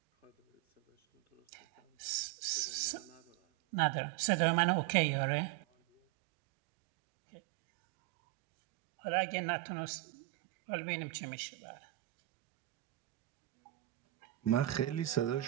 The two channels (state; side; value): quieter; left; 16.8 dB